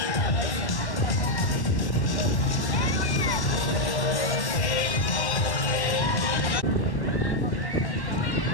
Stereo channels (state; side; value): late; right; 1.1 ms